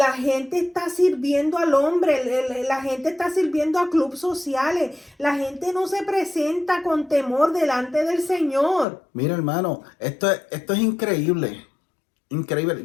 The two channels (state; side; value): drops out; right; at 8.8 s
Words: gente está sirviendo al hombre, la gente está sirviendo a clubes sociales, la gente no se presenta con temor delante del Señor. Mira, hermano, esto es increíble,